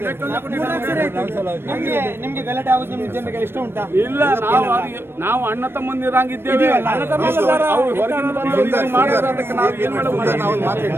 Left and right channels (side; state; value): left; late; 0.11 ms